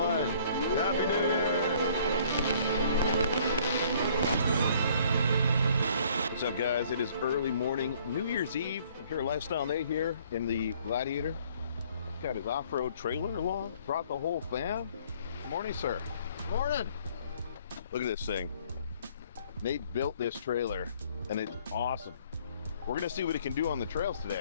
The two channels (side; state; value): both; inverted; correlation -0.59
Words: Happy New Year! What's up, guys? It is early morning, New Year's Eve. I'm here at Lifestyle Nate here in the Gladiator. Got his off-road trailer along. Brought the whole fam. Good morning, sir. Morning. Look at this thing. Nate built this trailer, and it's awesome. We're gonna see what it can do on the trails